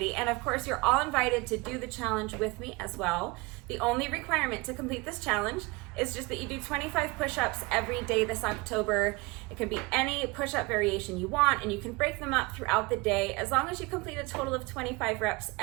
And of course, you're all invited to do the challenge with me as well. The only requirement to complete this challenge is just that you do 25 push-ups every day this October. It can be any push-up variation you want, and you can break them up throughout the day as long as you complete a total of 25 reps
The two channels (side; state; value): left; quieter; 24.7 dB